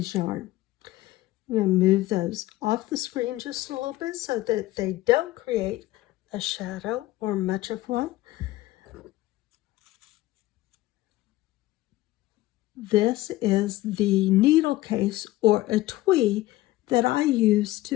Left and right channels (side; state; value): right; quieter; 16.9 dB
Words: yarn. I'm going to move those off the screen just a little bit so that they don't create a shadow or much of one. This is the needle case or etui that I use